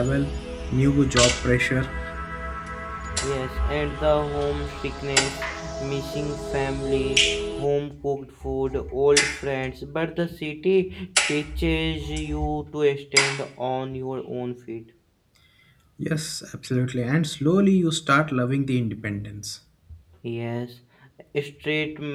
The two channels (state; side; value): identical; both; correlation 1.00